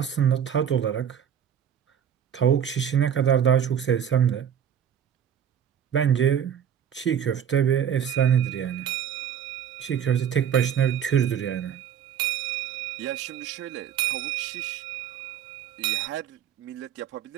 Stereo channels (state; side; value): quieter; left; 8.8 dB